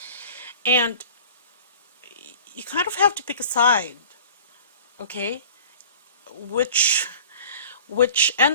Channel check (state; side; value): inverted; both; correlation -0.44